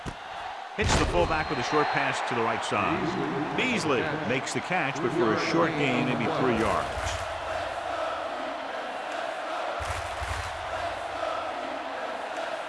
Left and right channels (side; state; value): both; identical; correlation 1.00